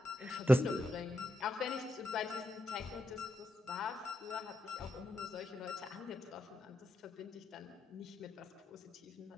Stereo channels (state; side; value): normal; both; correlation 0.83